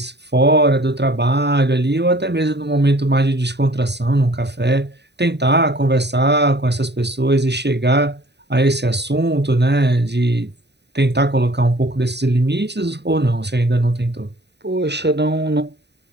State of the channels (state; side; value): late; left; 0.50 ms